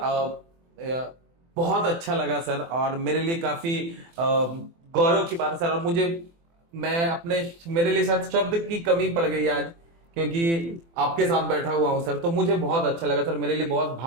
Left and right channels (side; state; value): left; late; 24 ms